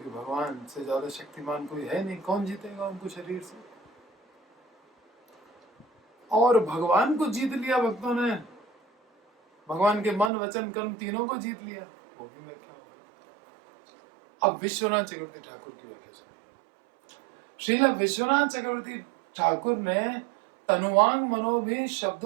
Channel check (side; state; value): left; drops out; at 10.3 s